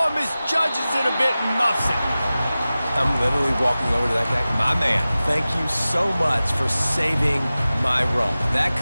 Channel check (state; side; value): inverted; both; correlation -0.96